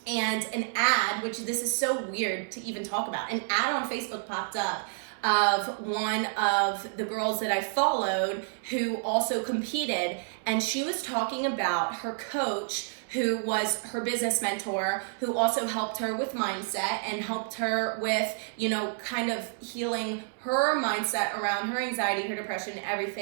and an ad, which this is so weird to even talk about, an ad on Facebook popped up of one of the girls that I followed who also competed, and she was talking about her coach, who was her business mentor, who also helped her with mindset and helped her with, kind of healing her mindset around her anxiety, her depression,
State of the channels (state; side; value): silent; left; 58 dB below the other